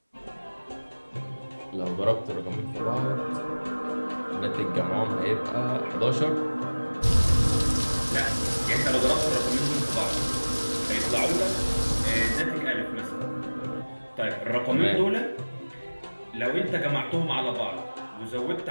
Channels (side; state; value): both; inverted; correlation -1.00